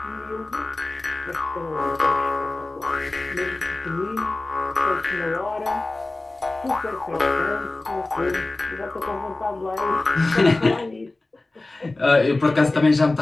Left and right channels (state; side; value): quieter; right; 3.0 dB